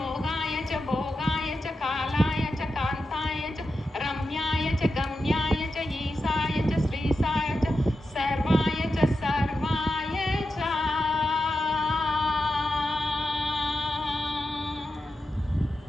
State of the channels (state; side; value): normal; both; correlation 0.90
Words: చ భోగాయ చ కాలాయ చ కాంతాయ చ రమ్యాయ చ గమ్యాయ చ ఈశాయ చ శ్రీశాయ చ సర్వాయ చ సర్వాయ చ